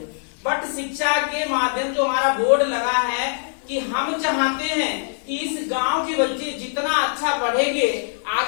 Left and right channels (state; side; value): silent; right; digital silence